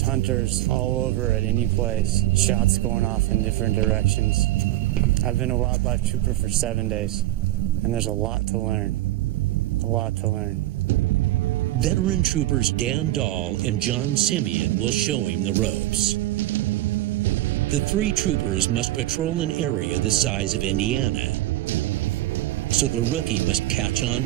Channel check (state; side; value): quieter; left; 15.7 dB